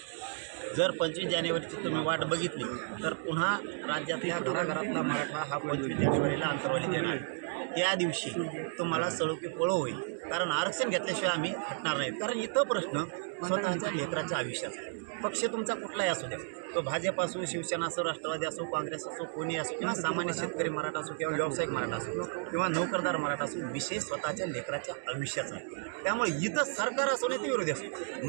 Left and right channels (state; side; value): silent; left; digital silence